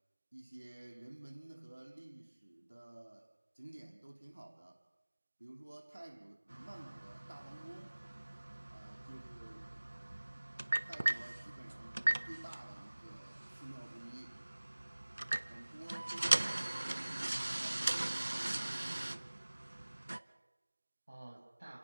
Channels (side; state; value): both; inverted; correlation -1.00